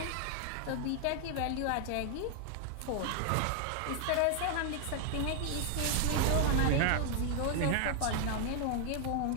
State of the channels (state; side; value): different; both; correlation 0.00